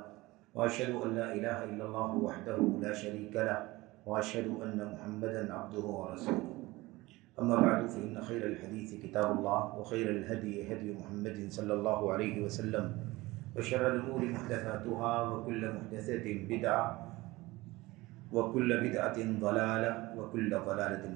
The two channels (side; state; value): left; quieter; 20.4 dB